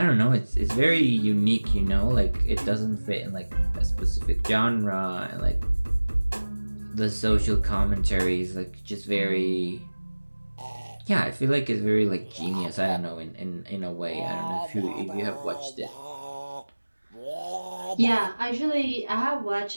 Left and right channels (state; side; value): inverted; both; correlation -1.00